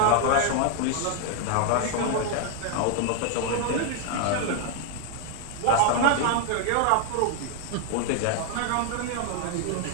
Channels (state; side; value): different; both; correlation 0.00